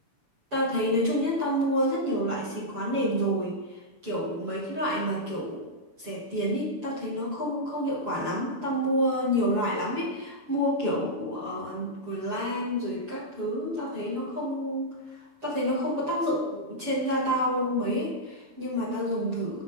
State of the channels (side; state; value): left; late; 6.9 ms